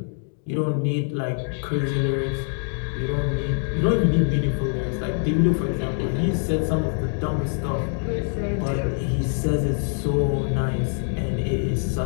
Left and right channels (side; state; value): right; silent; 57 dB below the other